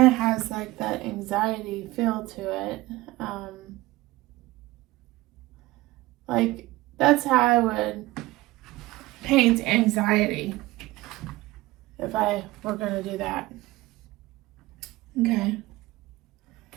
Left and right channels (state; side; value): quieter; left; 19.0 dB